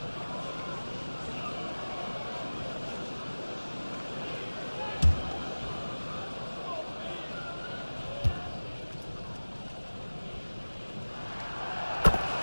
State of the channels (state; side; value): inverted; both; correlation -1.00